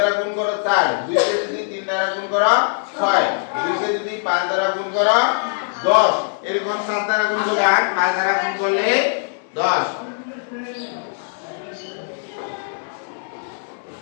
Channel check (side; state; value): right; silent; digital silence